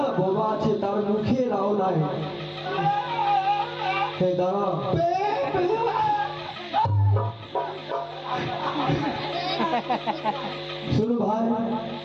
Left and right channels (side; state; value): both; identical; correlation 1.00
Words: বাবা আছে তার মুখে রাও নাই দাঁড়া শুনো ভাই